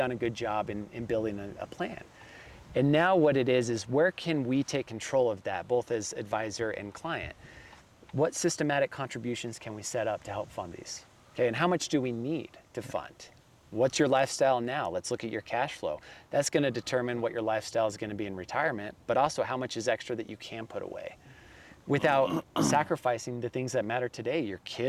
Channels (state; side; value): identical; both; correlation 1.00